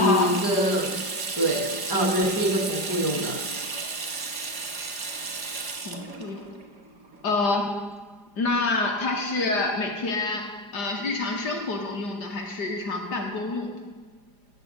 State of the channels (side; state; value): right; late; 4.9 ms